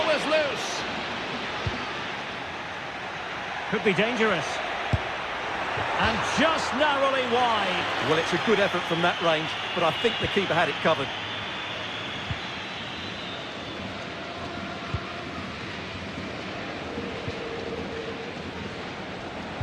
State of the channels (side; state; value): both; identical; correlation 1.00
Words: is loose. Could be dangerous. And just narrowly wide. Well, it's a good effort from that range, but I think the keeper had it covered.